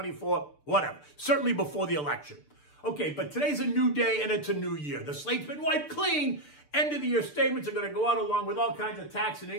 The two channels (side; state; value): right; late; 6.8 ms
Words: whatever. Certainly before the election. Okay, but today's a new day and it's a new year. The slate's been wiped clean. End of the year statements are going to go out along with all kinds of tax and